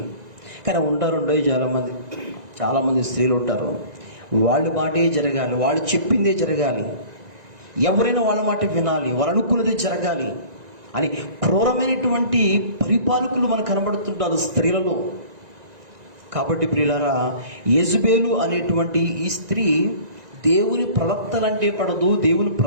కానీ ఉంటారు చాలామంది స్త్రీలు ఉంటారు. వాళ్ళ మాటే జరగాలి, వాళ్ళు చెప్పిందే జరగాలి, ఎవరైనా వాళ్ళ మాట వినాలి, వాళ్ళు అనుకున్నదే జరగాలి అని క్రూరమైనటువంటి పరిపాలకులు మనకు కనబడుతుంటారు స్త్రీలలో. కాబట్టి ప్రియులారా, యెజబెలు అనేటువంటి ఈ స్త్రీ దేవుని ప్రవక్తలంటే పడదు, దేవుని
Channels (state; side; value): late; left; 1.9 ms